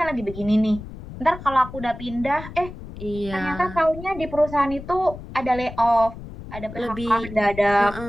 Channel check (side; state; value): left; noise; rumble, 13 dB below the sound